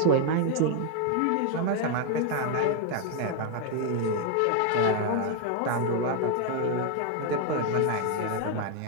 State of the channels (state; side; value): different; both; correlation 0.00